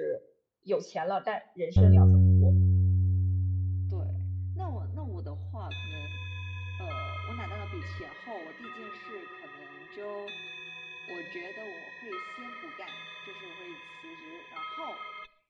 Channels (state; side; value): identical; both; correlation 1.00